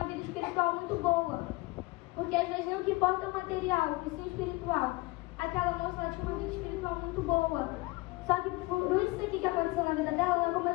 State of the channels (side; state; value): right; quieter; 22.0 dB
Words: vida espiritual muito boa. Porque às vezes não que importa o material, e sim o espiritual. Aquela moça, ela tinha uma vida espiritual muito boa. Só que por isso aqui que aconteceu na vida dela, ela